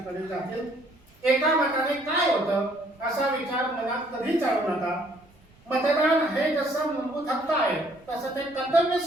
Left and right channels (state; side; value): noise; right; rumble, 30 dB below the sound